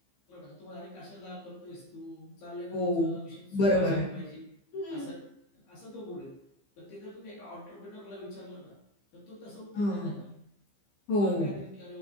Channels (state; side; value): late; right; 15 ms